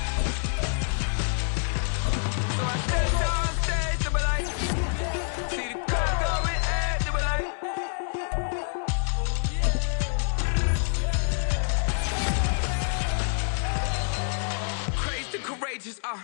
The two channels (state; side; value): silent; right; digital silence